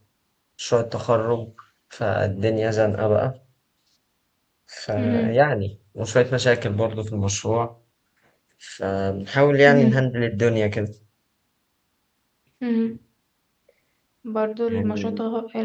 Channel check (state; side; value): identical; both; correlation 1.00